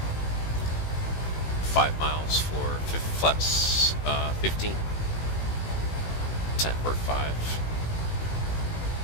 5 miles for flaps 15. 10 for 5.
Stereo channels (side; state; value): right; late; 18 ms